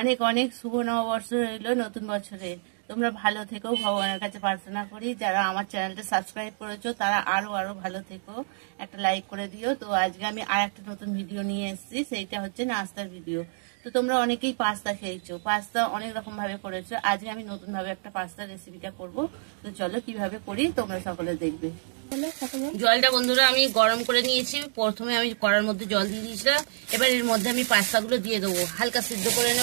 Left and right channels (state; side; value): silent; left; digital silence